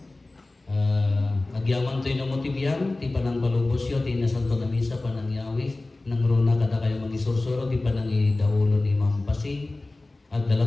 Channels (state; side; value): quieter; right; 3.0 dB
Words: Agyaman to'y namotibyan, ti panang balubosyo, ti nasanto na misa, panang yawis, nang runa kada kayo magisursuro, ti panang idaulo ni Mampasi, at